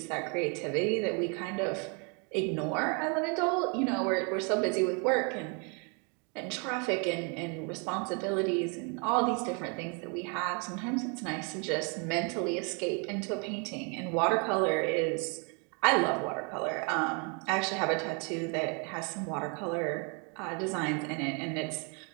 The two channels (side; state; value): left; quieter; 35.1 dB